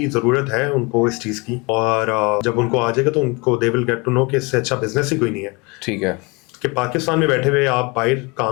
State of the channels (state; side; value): quieter; right; 27.8 dB